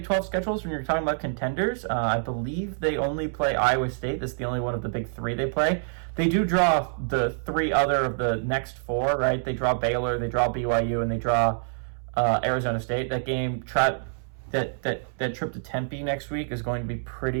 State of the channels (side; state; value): left; silent; 61 dB below the other